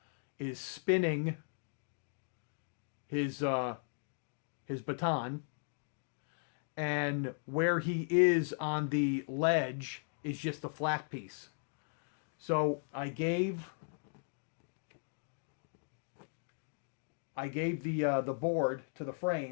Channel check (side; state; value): right; silent; digital silence